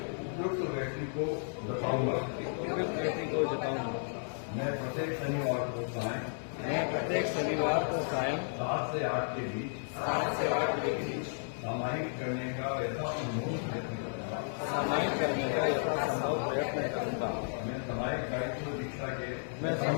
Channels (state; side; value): silent; right; digital silence